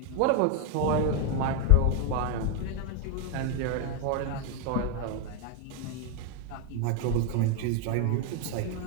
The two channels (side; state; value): both; different; correlation 0.01